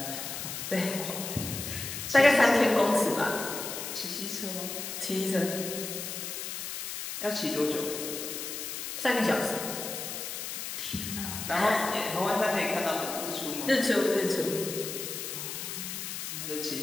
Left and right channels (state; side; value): noise; left; hiss, 6 dB below the sound